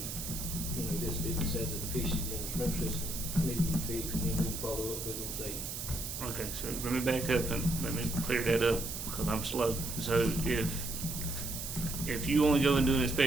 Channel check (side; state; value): right; noise; hiss, 6 dB below the sound